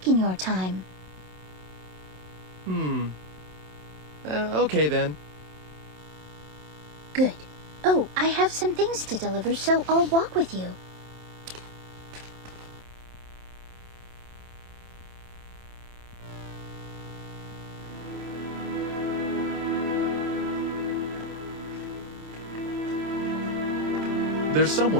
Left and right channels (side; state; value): left; late; 27 ms